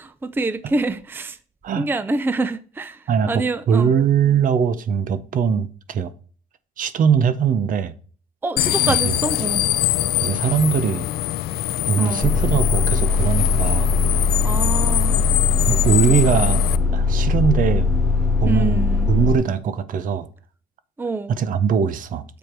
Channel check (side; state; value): both; normal; correlation 0.51